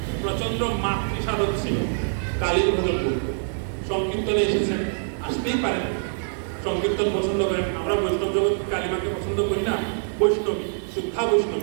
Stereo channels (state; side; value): silent; left; 62 dB below the other